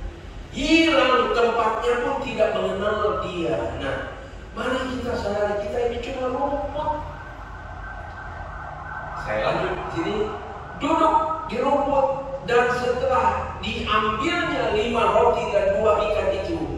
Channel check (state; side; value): identical; both; correlation 1.00